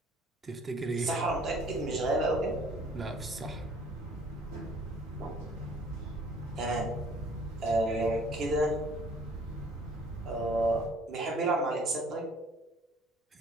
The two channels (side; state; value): both; normal; correlation 0.56